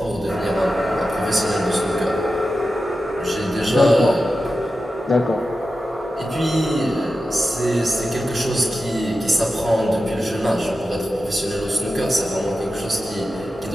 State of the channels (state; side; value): normal; both; correlation 0.92